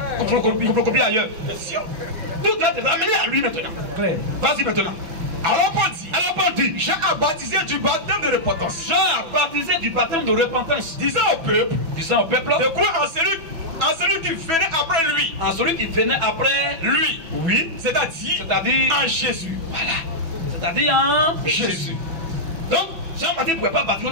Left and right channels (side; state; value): left; late; 6.1 ms